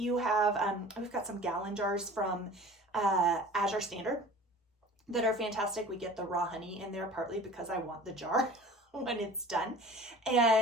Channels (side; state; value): both; normal; correlation 0.43